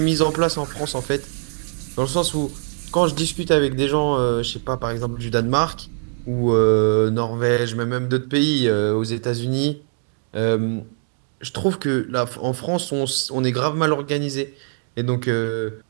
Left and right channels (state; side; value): silent; left; 58 dB below the other